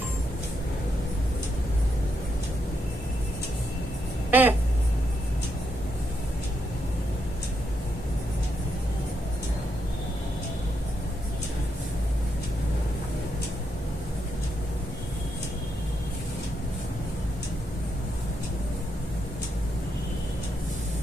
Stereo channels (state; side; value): normal; both; correlation 0.80